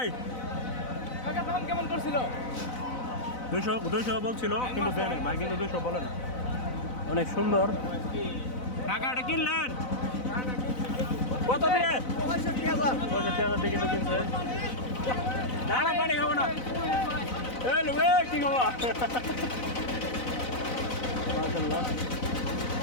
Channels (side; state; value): right; late; 4.0 ms